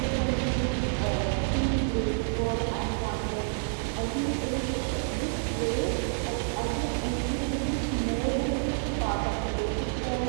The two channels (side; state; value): left; silent; digital silence